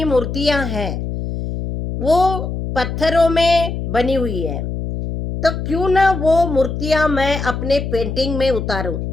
मूर्तियां हैं, वो पत्थरों में बनी हुई है। तो क्यों ना वो मूर्तियां मैं अपने पेंटिंग में उतारूं।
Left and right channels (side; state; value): left; noise; hum, 5 dB below the sound